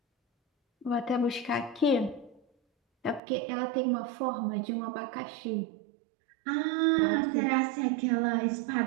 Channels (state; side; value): drops out; left; at 3.2 s